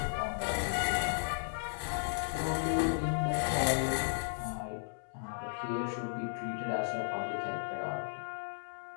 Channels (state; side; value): silent; right; 55 dB below the other